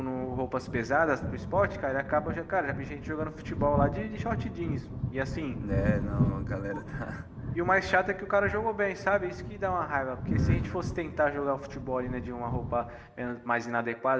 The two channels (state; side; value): identical; both; correlation 1.00